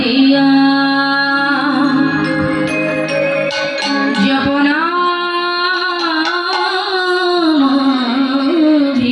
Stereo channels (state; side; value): identical; both; correlation 1.00